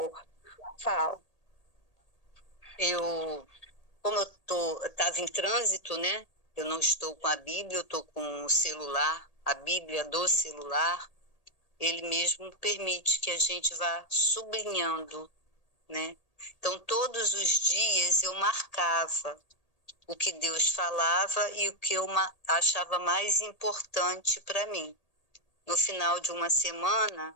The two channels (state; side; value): late; right; 1.8 ms